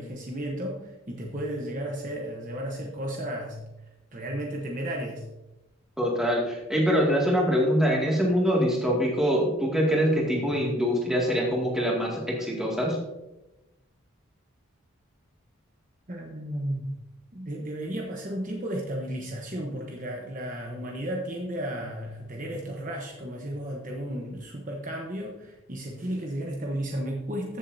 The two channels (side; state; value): both; normal; correlation 0.59